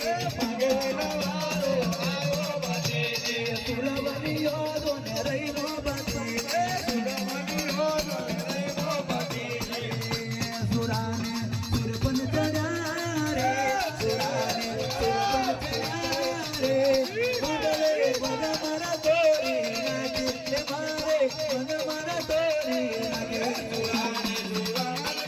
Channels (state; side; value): identical; both; correlation 1.00